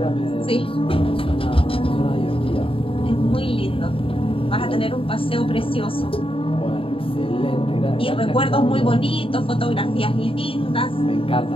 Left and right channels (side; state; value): right; late; 0.26 ms